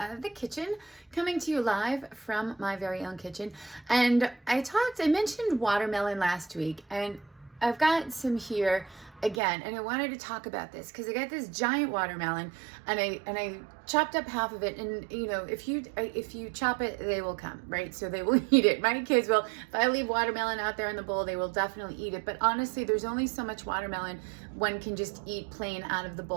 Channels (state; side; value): drops out; left; at 9.4 s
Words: The Kitchen, coming to you live from my very own kitchen. And I mentioned watermelon last week, and I've got some here again, and I wanted to talk about this because I got this giant watermelon, and I chopped up half of it, and if you chop it, they will come, right? So they will eat it. My kids will. If I leave watermelon out there in the bowl, they will definitely eat it. But honestly, there's only so much watermelon one can just eat plain out of the